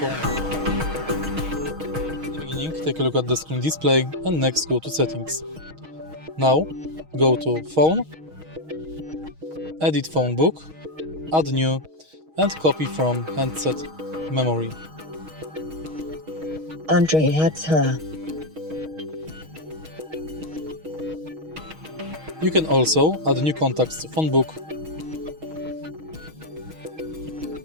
Beginning, take a look at the screen display and next go to settings. Now go to phone, edit Phonebook, add new and copy from handset memory. Andre has her. You can also add new contacts to Phonebook.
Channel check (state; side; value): late; left; 6.3 ms